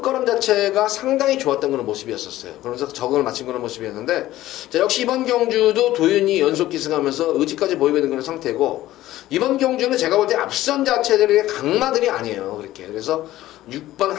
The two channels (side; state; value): right; quieter; 15.1 dB